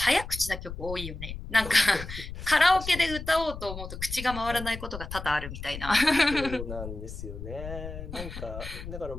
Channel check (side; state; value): left; noise; rumble, 9 dB below the sound